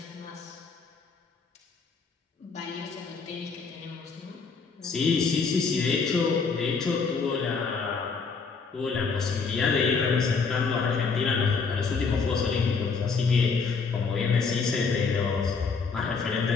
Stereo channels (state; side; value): quieter; right; 5.0 dB